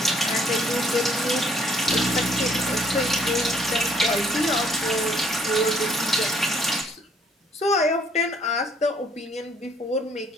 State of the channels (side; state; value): both; normal; correlation 0.63